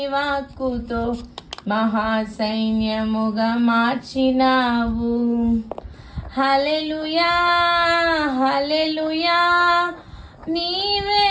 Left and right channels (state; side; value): identical; both; correlation 1.00